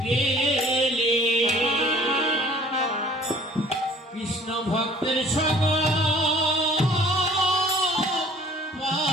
গেলে কৃষ্ণ ভক্তের সঙ্গ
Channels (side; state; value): both; normal; correlation 0.52